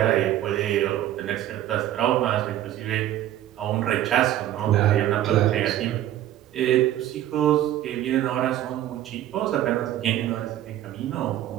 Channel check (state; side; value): quieter; left; 12.7 dB